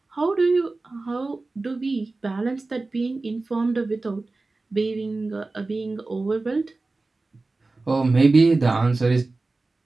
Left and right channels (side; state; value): left; quieter; 3.4 dB